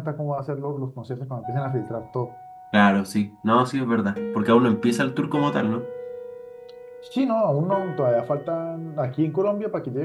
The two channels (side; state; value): both; identical; correlation 1.00